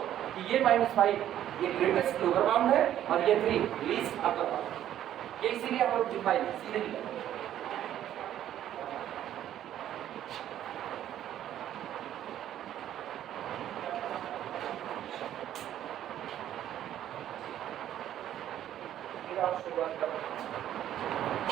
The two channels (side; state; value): left; quieter; 11.5 dB